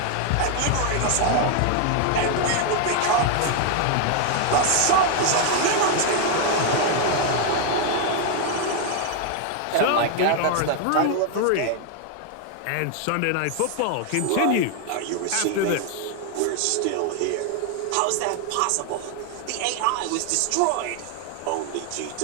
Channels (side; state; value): both; different; correlation 0.00